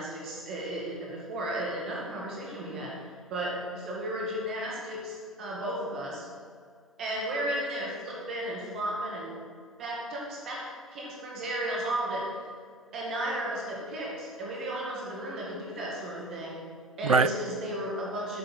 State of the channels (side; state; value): both; normal; correlation 0.36